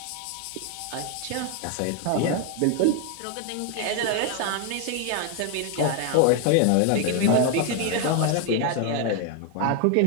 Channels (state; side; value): different; both; correlation 0.01